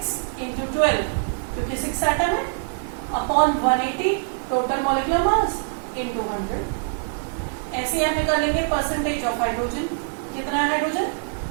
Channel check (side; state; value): left; silent; digital silence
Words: इंटू 12, क्योंकि 6 एटम है, upon 180 total molecular mass into 100। ऐसे आप निकालेंगे परसेंटेज ऑफ हाइड्रोजन। कितना है हाइड्रोजन?